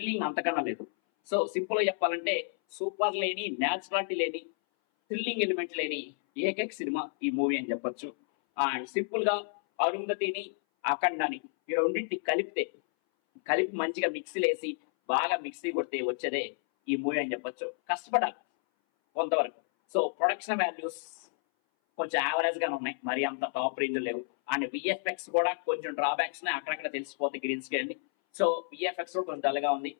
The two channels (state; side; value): silent; right; 57 dB below the other